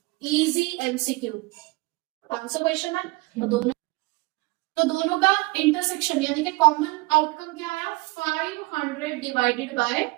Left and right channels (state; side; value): quieter; left; 23.3 dB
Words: easy MCQ 500 question है, तो दोनों का इंटरसेक्शन यानी कि कॉमन आउटकम क्या आया? 500 डिवाइडेड बाय